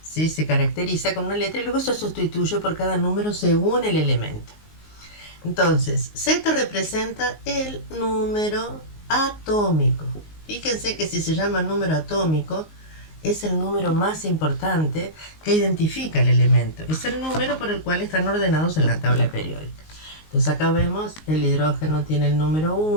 ¿sí? Se caracteriza con una letra y luego se sustituye por cada número según el elemento. Entonces, Z representa el número atómico. Fíjense que si se llama número atómico, es el número más importante que identifica el elemento. Es el número por el cual están ordenados en la tabla periódica. Entonces acá vemos, el hidrógeno tiene el número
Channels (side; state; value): right; late; 19 ms